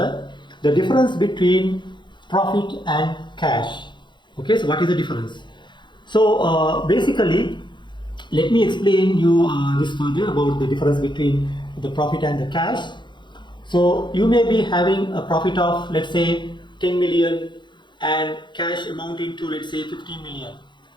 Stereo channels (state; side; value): late; right; 0.22 ms